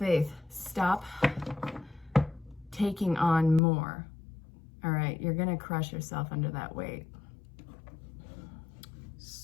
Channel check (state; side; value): drops out; right; at 3.6 s